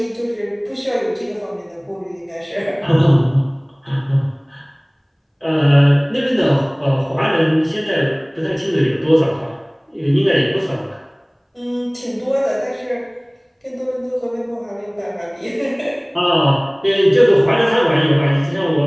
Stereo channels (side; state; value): both; identical; correlation 1.00